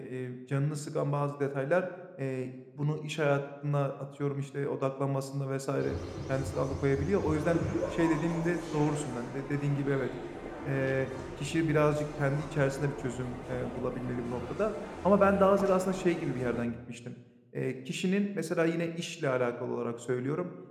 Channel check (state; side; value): identical; both; correlation 1.00